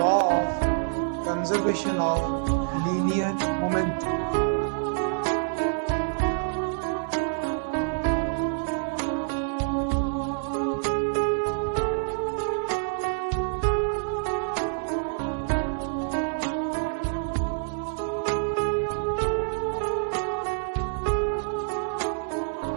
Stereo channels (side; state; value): left; silent; digital silence